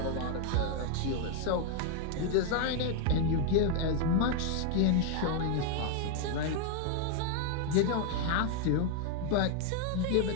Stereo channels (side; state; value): both; different; correlation 0.00